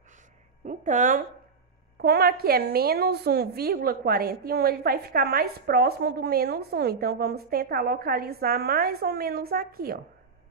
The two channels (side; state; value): left; quieter; 5.1 dB